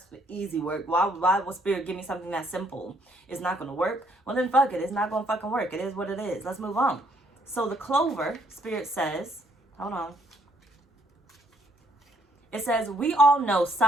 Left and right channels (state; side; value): normal; both; correlation 0.68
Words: easy work. Why will Spirit give me something that simple? It's not going to work. Well, then fuck it. It's not going to fucking work. It is what it is. Let's move on. So the clover, Spirit says, hold on. It says, we all know